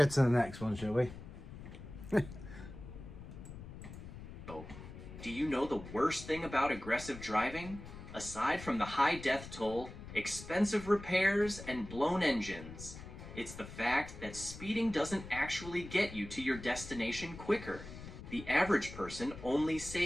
to the next one, shall we? Do you know the worst thing about aggressive driving? Aside from the high death toll, expensive repairs, and blown engines, it's the fact that speeding doesn't actually get you to your destination quicker. The average person only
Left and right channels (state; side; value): noise; left; rumble, 13 dB below the sound